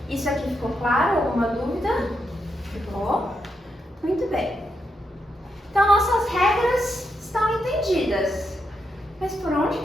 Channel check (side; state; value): both; normal; correlation 0.83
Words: Isso aqui ficou claro? Alguma dúvida? Ficou? Muito bem. Então nossas regras estão entendidas. Mas por onde